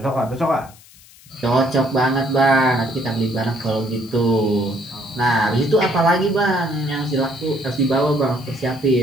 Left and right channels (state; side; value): noise; left; hiss, 24 dB below the sound